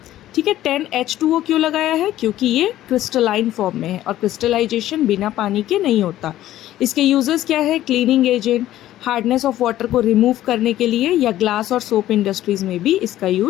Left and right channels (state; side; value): quieter; right; 13.7 dB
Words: ठीक है। 10H2O क्यों लगाया है? क्योंकि ये क्रिस्टलाइन फॉर्म में है और क्रिस्टलाइजेशन बिना पानी के नहीं होता। इसके यूजेस क्या है? Cleaning agent, hardness of water को रिमूव करने के लिए, या ग्लास और सोप इंडस्ट्रीज में भी इसका